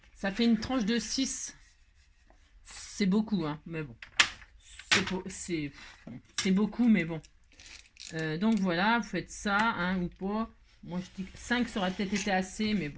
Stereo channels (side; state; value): both; identical; correlation 1.00